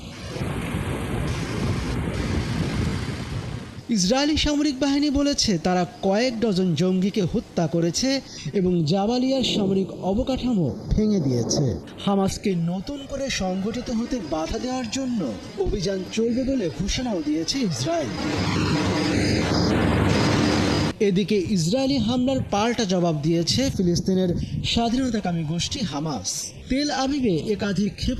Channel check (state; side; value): identical; both; correlation 1.00